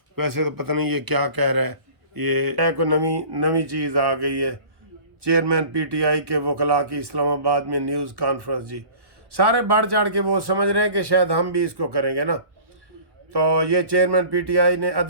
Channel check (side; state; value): left; late; 1.1 ms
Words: ویسے تو پتہ نہیں یہ کیا کہہ رہا ہے، یہ کوئی نئی چیز آ گئی ہے۔ چیئرمین پی ٹی آئی کے وکلاء کی اسلام آباد میں نیوز کانفرنس، جی سارے بڑھ چڑھ کے وہ سمجھ رہے ہیں کہ شاید ہم بھی اس کو کریں گے نا۔ تو یہ چیئرمین پی ٹی آئی نے